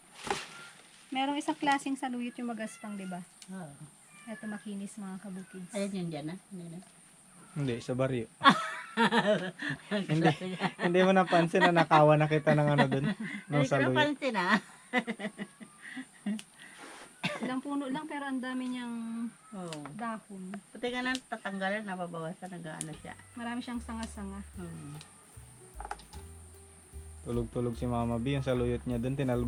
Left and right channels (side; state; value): both; identical; correlation 1.00